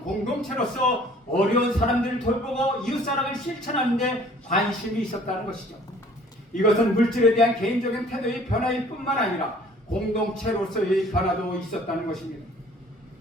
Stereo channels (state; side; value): normal; both; correlation 0.54